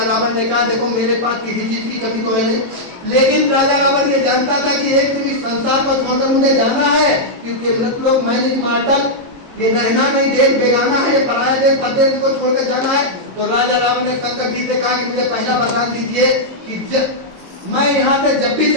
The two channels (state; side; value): late; left; 22 ms